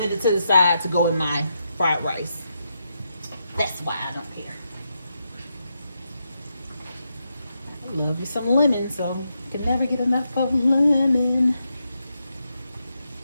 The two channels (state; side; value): inverted; both; correlation -0.84